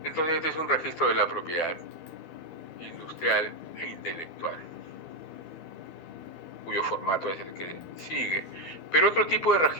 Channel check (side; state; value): right; late; 12 ms